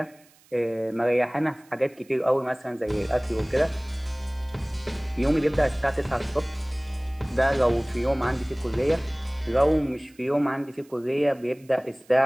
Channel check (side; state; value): right; noise; hiss, 29 dB below the sound